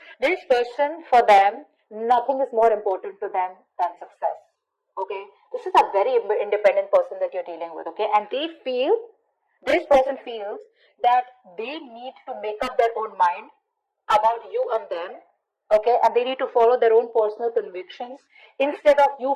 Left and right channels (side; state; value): both; identical; correlation 1.00